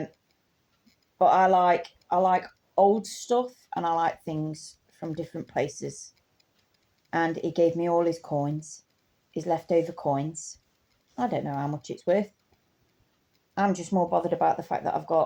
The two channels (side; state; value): both; identical; correlation 1.00